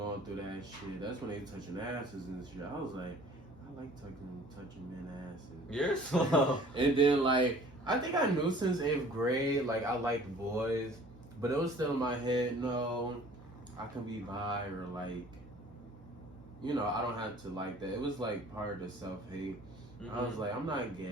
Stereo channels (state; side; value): normal; both; correlation 0.50